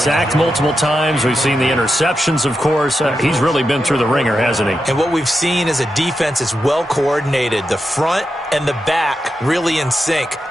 multiple times. We've seen the interceptions, of course. He's really been through the ringer, hasn't he? And what we've seen is a defense is well coordinated. The front and the back really in sync.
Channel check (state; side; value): normal; both; correlation 0.88